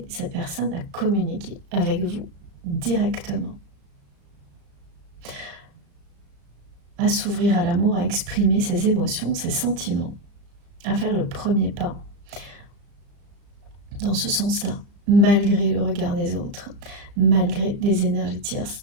cette personne à communiquer avec vous directement, à s'ouvrir à l'amour, à exprimer ses émotions, ses sentiments, à faire le premier pas dans ce sens-là, malgré le regard des autres, malgré les énergies tierces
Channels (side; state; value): left; late; 35 ms